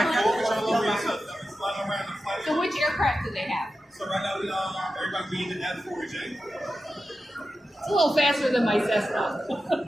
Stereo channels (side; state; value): both; normal; correlation 0.92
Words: So which aircraft do they have? So right now, everybody being in F-4J. It's a little faster than my Cessna.